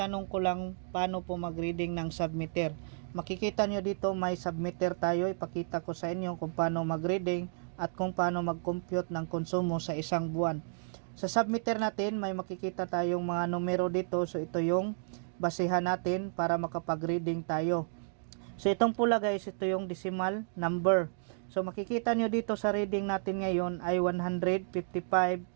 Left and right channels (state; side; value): silent; left; digital silence